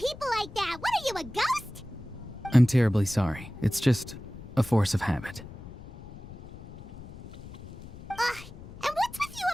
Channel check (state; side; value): noise; left; rumble, 15 dB below the sound